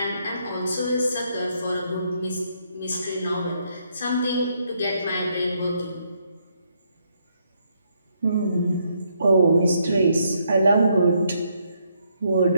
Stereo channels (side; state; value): both; inverted; correlation -0.74